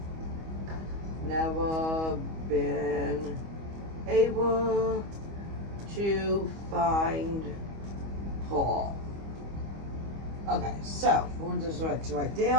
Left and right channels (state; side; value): late; left; 25 ms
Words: never been able to find Paul. Okay, so we'll just right